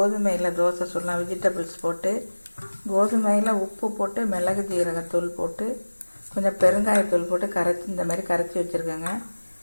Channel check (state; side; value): inverted; both; correlation -1.00